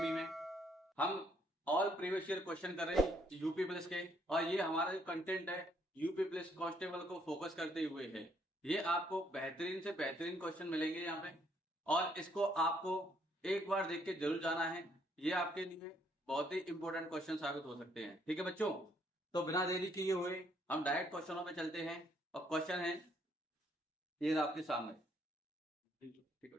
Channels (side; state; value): both; normal; correlation 0.69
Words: में। हम ऑल प्रीवियस ईयर क्वेश्चन कर रहे हैं यूपी पुलिस के, और ये हमारा जो कंटेंट है यूपी पुलिस कांस्टेबल को फोकस करते हुए है। ये आपको बेहतरीन से बेहतरीन क्वेश्चन मिलेंगे यहाँ पे, और इसको आपको एक बार देख के जरूर जाना है। ये आपके लिए बहुत ही इंपॉर्टेंट क्वेश्चन साबित हो सकते हैं। ठीक है बच्चों, तो बिना देरी किए हुए हम डायरेक्ट क्वेश्चनों पे चलते हैं। और क्वेश्चन है ये आपके सामने। ठीक है